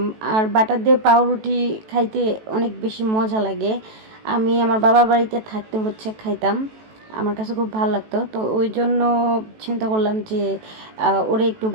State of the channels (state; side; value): late; left; 18 ms